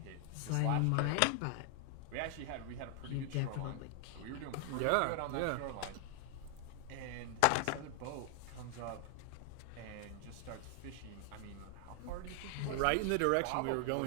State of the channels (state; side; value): different; both; correlation 0.00